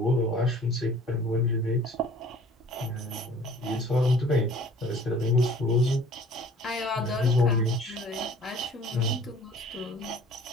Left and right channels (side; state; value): both; normal; correlation 0.51